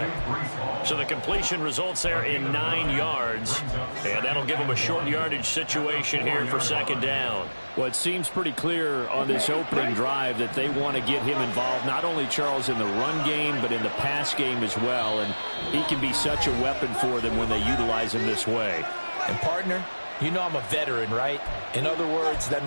So the completion results there in 9 yards. And that'll give them a short yardage situation here for second down. Well, it seems pretty clear on this opening drive that they want to get him involved, not only, Charles, in the run game, but in the pass game as well. And he can be such a weapon for them when they utilize him this way. And, partner, you know I'm a veteran, right? In other words, that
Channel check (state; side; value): inverted; both; correlation -1.00